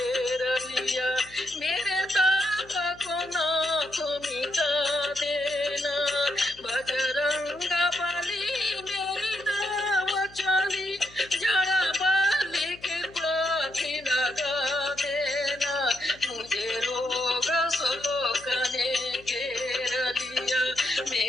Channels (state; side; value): noise; left; hum, 23 dB below the sound